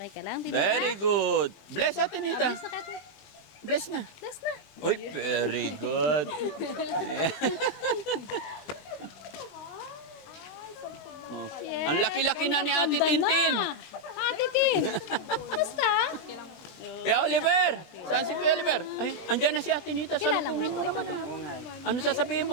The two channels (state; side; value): late; right; 20 ms